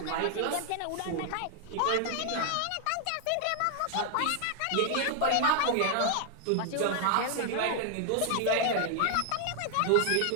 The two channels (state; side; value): different; both; correlation 0.00